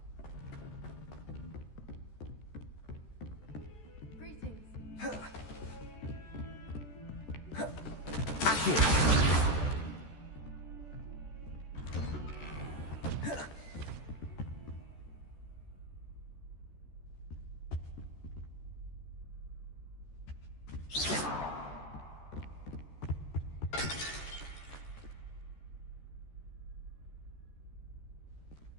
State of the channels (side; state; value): right; late; 14 ms